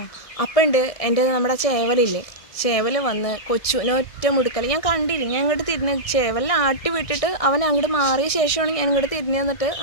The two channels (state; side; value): late; right; 1.7 ms